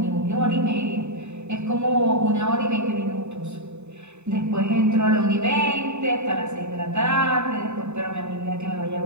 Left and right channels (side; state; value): left; late; 0.82 ms